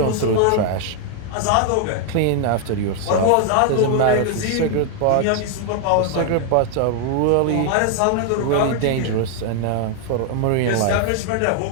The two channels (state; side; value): different; both; correlation 0.00